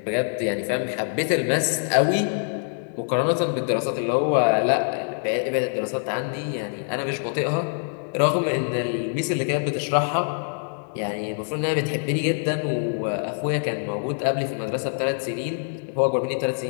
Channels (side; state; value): right; silent; digital silence